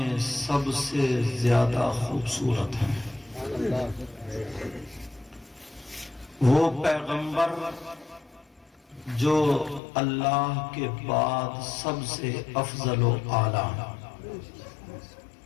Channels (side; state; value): right; drops out; at 9.8 s